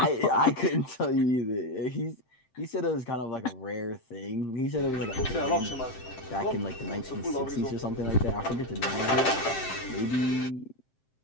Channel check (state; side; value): late; right; 7.7 ms